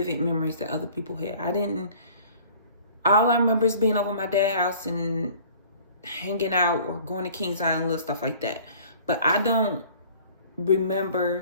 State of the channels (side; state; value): both; inverted; correlation -0.50